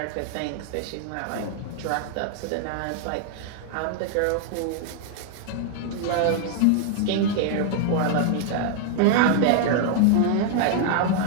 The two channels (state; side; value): different; both; correlation 0.00